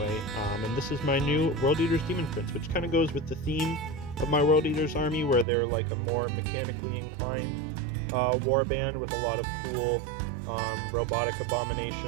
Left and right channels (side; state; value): left; drops out; at 5.5 s